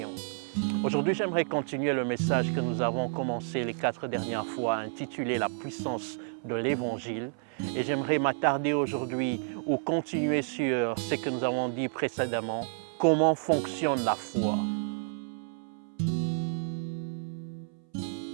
Aujourd'hui, j'aimerais continuer le message que nous avons commencé les 4 dernières fois, intitulé « La puissance de l'Évangile ». Et j'aimerais m'attarder aujourd'hui ou continuer sur ce que nous avons dit précédemment, comment fonctionne la foi.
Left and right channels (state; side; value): silent; left; 58 dB below the other